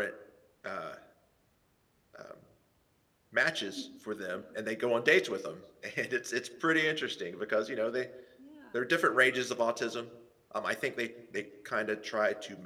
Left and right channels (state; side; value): identical; both; correlation 1.00